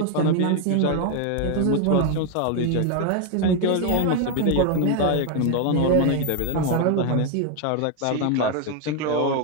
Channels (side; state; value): both; different; correlation 0.01